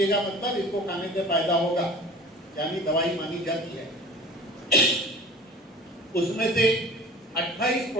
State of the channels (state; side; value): normal; both; correlation 0.42